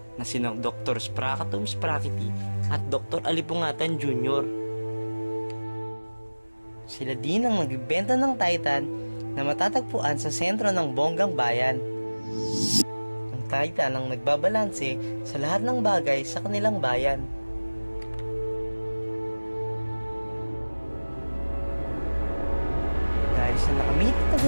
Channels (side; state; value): both; inverted; correlation -1.00